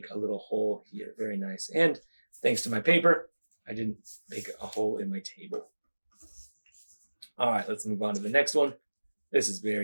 a little hole here. Very nice. And thanks to my paper, I didn't make a hole in my table. All right, let's move on to the next one. This is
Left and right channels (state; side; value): inverted; both; correlation -1.00